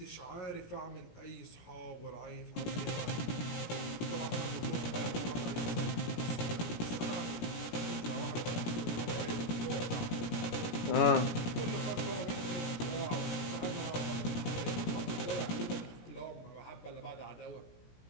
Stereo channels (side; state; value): right; late; 17 ms